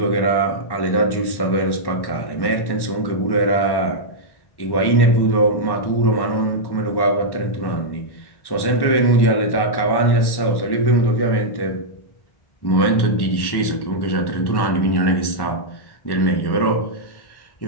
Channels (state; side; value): late; right; 1.1 ms